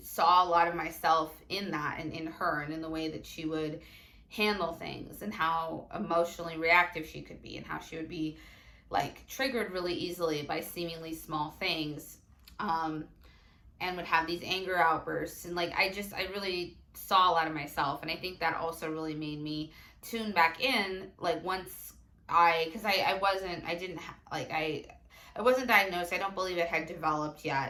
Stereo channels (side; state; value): both; identical; correlation 1.00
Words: saw a lot of myself in that and in her and in the way that she would handle things and how emotionally reactive she could be and how she would be like triggered really easily by seemingly small things, and would have these anger outbursts. And like I really saw a lot of myself, and I think that also really made me tune back in. Like once because I wasn't, I didn't like I wasn't diagnosed. I don't believe it had developed